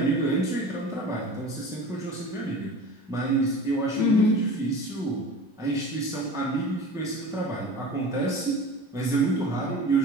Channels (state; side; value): normal; both; correlation 0.37